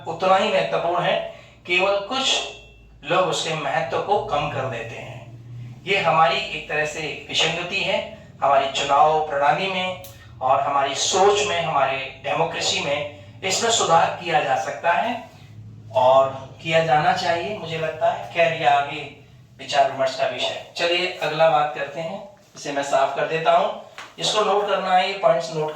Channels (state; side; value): identical; both; correlation 1.00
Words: उतना ही महत्वपूर्ण है, केवल कुछ लोग उसके महत्व को कम कर देते हैं। ये हमारी एक तरह से विसंगति है हमारी चुनाव प्रणाली में और हमारी सोच में, हमारे डेमोक्रेसी में। इसमें सुधार किया जा सकता है और किया जाना चाहिए, मुझे लगता है। खैर, ये आगे विचार विमर्श का विषय। चलिए अगला बात करते हैं, इसे मैं साफ कर देता हूं। इसको नोट करना है, ये पॉइंट्स नोट